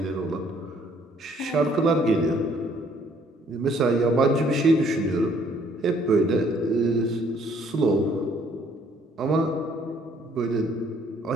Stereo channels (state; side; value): normal; both; correlation 0.63